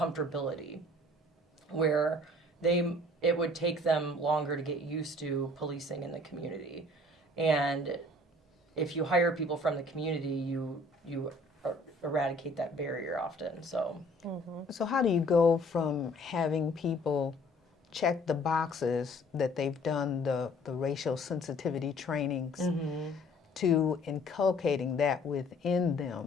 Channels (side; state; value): both; normal; correlation 0.54